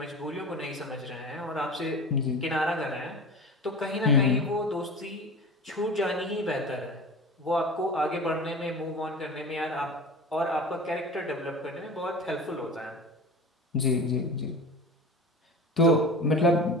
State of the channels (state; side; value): normal; both; correlation 0.34